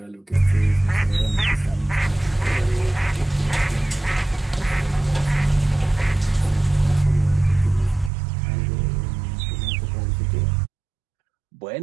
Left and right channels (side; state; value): left; drops out; at 8.1 s